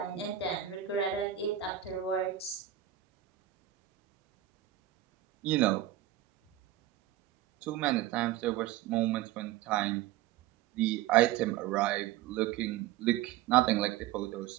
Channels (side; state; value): left; quieter; 12.8 dB